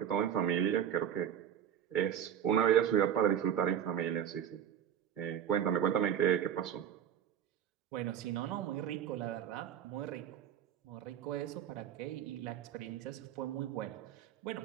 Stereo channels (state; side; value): quieter; left; 9.6 dB